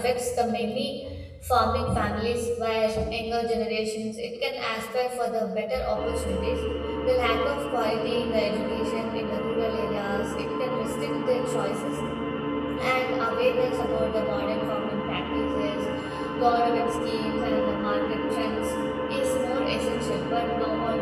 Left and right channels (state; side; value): identical; both; correlation 1.00